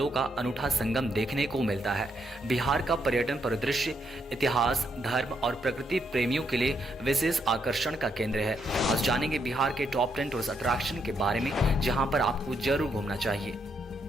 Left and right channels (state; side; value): normal; both; correlation 0.77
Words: का अनूठा संगम देखने को मिलता है। बिहार का पर्यटन परिदृश्य इतिहास, धर्म और प्रकृति प्रेमियों के लिए विशेष आकर्षण का केंद्र है। आज जानेंगे बिहार के टॉप 10 टूरिस्ट अट्रैक्शन के बारे में, जहां पर आपको जरूर घूमना चाहिए।